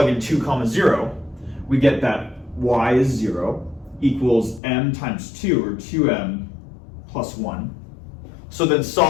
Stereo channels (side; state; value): right; drops out; at 4.6 s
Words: in 2, 0, we get that y is 0 equals m times 2, or 2m plus 1. So then